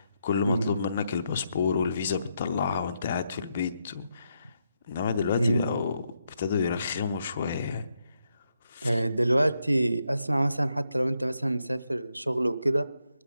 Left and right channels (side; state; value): both; inverted; correlation -0.81